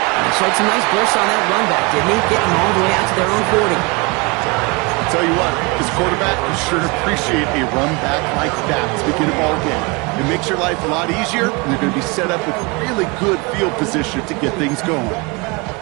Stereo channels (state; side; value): quieter; left; 27.5 dB